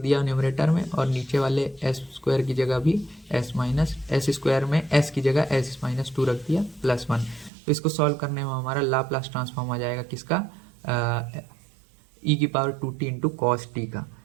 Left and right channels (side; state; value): left; drops out; at 7.5 s